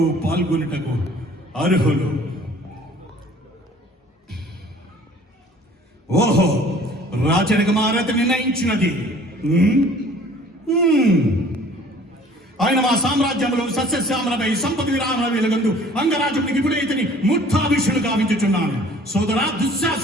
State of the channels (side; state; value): both; normal; correlation 0.52